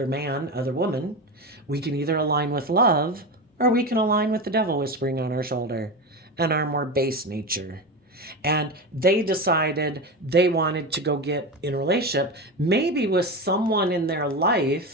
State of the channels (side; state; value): both; normal; correlation 0.21